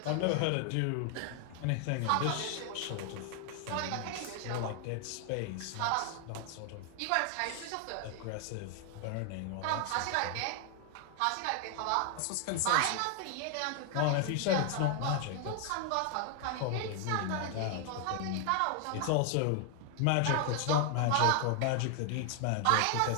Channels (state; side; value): different; both; correlation 0.00